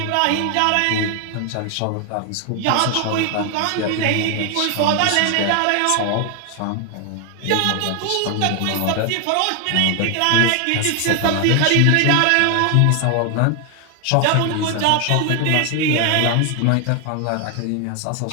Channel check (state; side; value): different; both; correlation 0.00